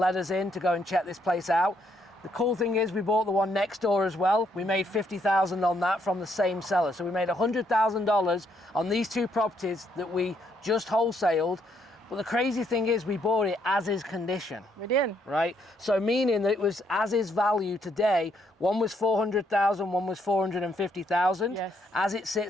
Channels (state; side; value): normal; both; correlation 0.73